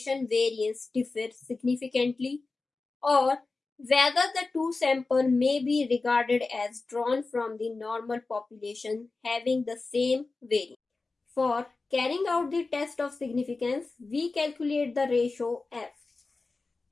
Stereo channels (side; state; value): right; quieter; 3.7 dB